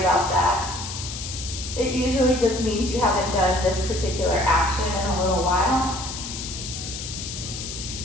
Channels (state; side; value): noise; left; hiss, 8 dB below the sound